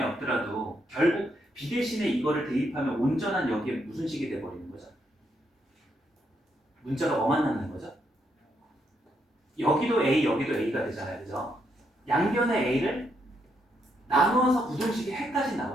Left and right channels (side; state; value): both; normal; correlation 0.77